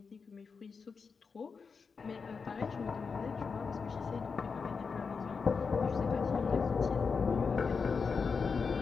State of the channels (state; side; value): quieter; right; 5.3 dB